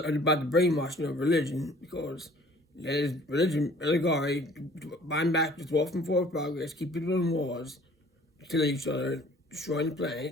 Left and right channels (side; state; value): both; normal; correlation 0.52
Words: about the brainwashing of religion because. That is religion, allegory, bind back the dwarf and forward progress, keep people in wars, kill each other, destroying the